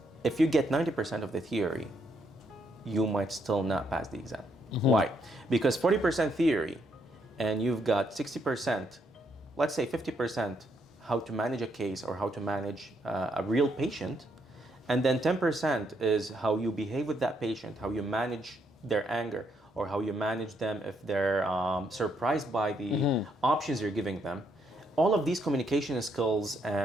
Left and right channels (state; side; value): normal; both; correlation 0.75